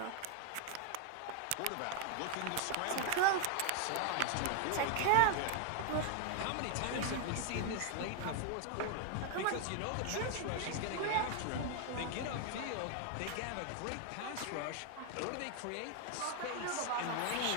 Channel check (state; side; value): different; both; correlation 0.01